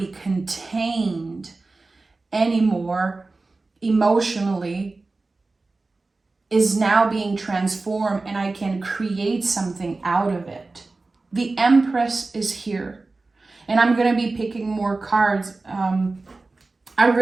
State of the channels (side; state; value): left; quieter; 3.5 dB